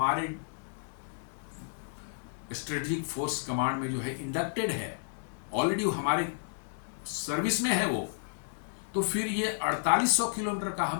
स्ट्रेटेजिक फोर्स कमांड में जो है इंडक्टेड है, ऑलरेडी हमारे सर्विस में है वो। तो फिर ये 4800 किलोमीटर का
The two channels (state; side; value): silent; right; digital silence